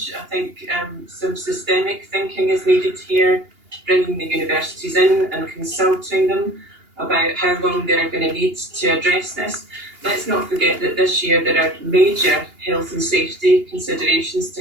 I think some systemic thinking is needed here, bringing the universities in and consulting them about how long they're going to need to address this. Let's not forget that this year there are major health and safety considerations to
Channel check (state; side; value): late; left; 2.8 ms